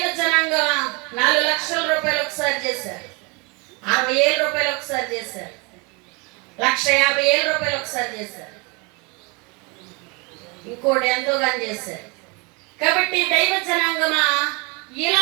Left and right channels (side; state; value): left; quieter; 29.7 dB